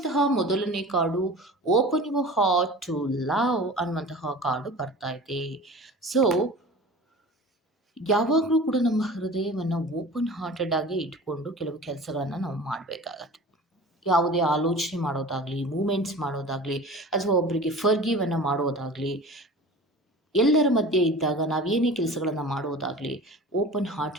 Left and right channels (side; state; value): both; normal; correlation 0.39